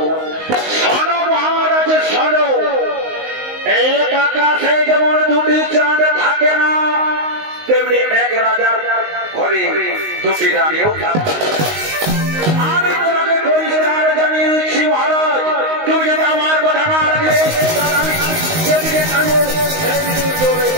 শোনো মহারাজ, শোনো, এক আকাশে যেমন দুটি চাঁদ থাকে না, তেমনি এক রাজার ঘরে দুটি রানীও থাকে। আমি তোমাকে পরিষ্কার জানিয়ে দিচ্ছি মহারাজ, তুমি যদি আমার কথা না রাখলে তাহলে আমি যেদিকে থাকবো সেদিকে চলে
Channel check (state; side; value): late; left; 19 ms